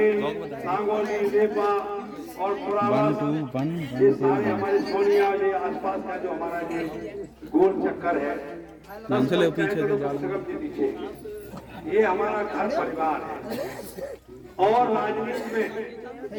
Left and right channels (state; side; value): identical; both; correlation 1.00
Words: सांगोली, नेपा और पुरावास, ये सारे हमारे सोनिया, ये आसपास का जो हमारा ये गोल चक्कर है, चले पीछे पीछे, ये हमारा घर परिवार है। और राजनीति में